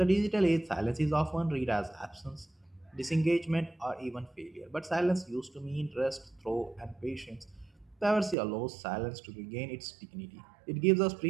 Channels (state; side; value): drops out; left; at 8.3 s